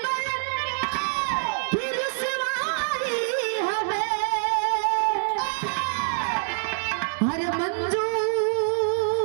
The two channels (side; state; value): left; silent; digital silence